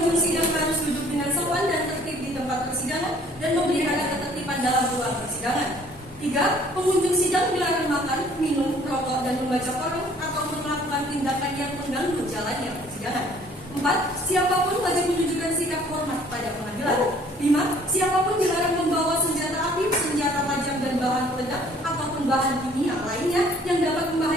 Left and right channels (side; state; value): both; normal; correlation 0.57